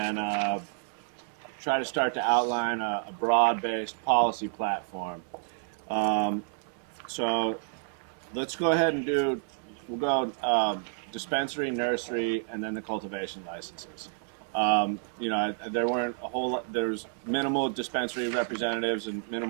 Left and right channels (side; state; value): left; silent; digital silence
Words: try to start to outline a broad-based policy platform. So let's go ahead and we'll go dispensary, nursery, and then the cultivation licenses. There weren't a whole lot, there's minimal dispensary representatives and